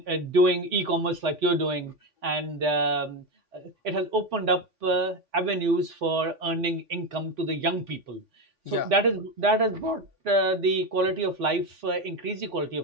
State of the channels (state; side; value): late; left; 3.8 ms